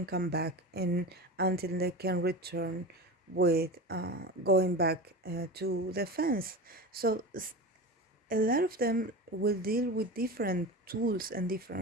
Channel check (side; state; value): both; normal; correlation 0.28